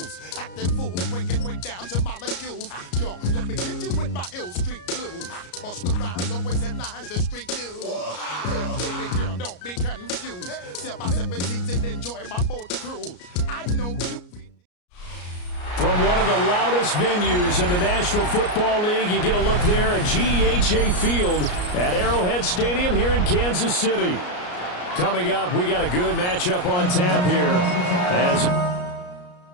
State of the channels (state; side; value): late; right; 34 ms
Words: Acting fool, break down to molecules. Yo, let me hit you with my ill street blues. Bust the rhymes, always in lines, the street news. Baby girl, don't be confused. Sell my 7 seats and enjoy my boat cruise. I know you. From one of the loudest venues in the National Football League, you get a look there at GEHA Field at Arrowhead Stadium here in Kansas City. Coming up, we got a good matchup on tap here as